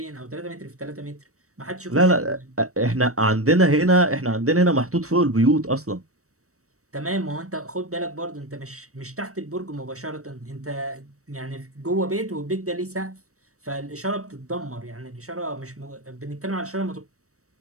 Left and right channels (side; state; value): left; late; 0.65 ms